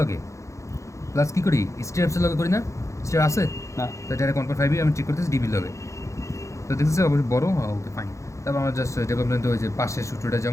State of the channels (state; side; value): late; right; 0.15 ms